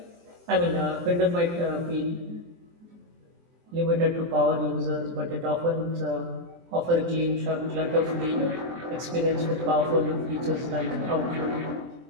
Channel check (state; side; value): late; left; 23 ms